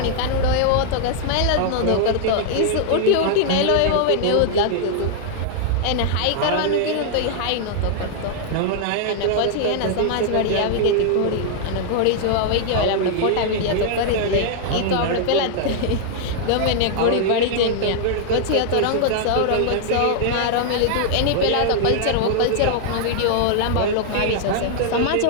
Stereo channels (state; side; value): different; both; correlation -0.01